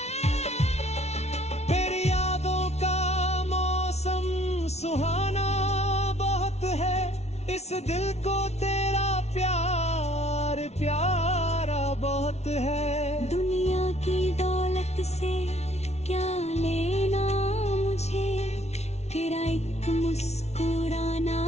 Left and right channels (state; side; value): late; right; 0.31 ms